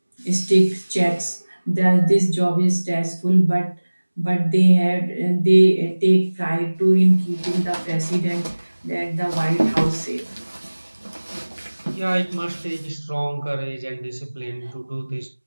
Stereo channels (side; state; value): both; inverted; correlation -1.00